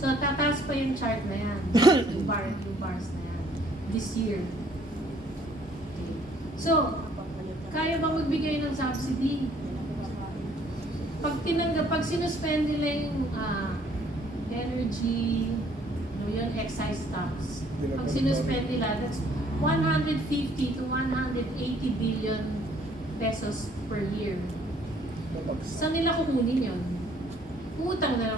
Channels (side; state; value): both; normal; correlation 0.62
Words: tataas pa yung chart na yan, yung bars na yan, this year. Okay. So, kaya ba magbigay ng subsidy? Pag sinuspend nila yung energy, yun, excise tax, pag sinuspend nila, that's 150 to 180 billion pesos per year. Saan nila kukunin yun? Utang na